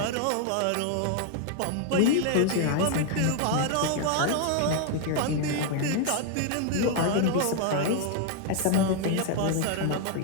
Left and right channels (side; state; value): both; different; correlation 0.00